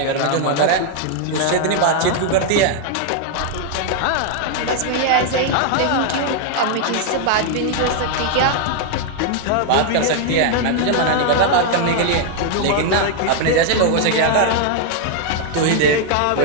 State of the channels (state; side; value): different; both; correlation 0.00